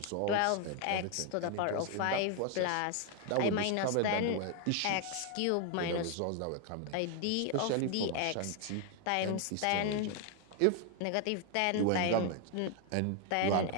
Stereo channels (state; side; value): different; both; correlation 0.00